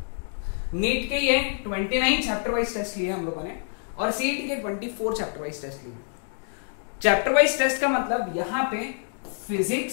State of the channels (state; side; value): silent; right; digital silence